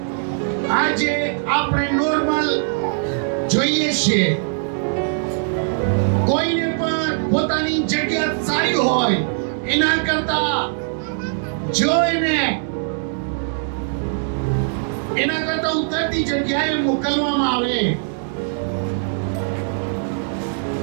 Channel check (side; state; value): left; silent; digital silence